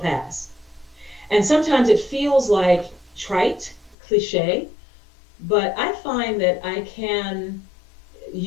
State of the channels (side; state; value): right; drops out; at 4.0 s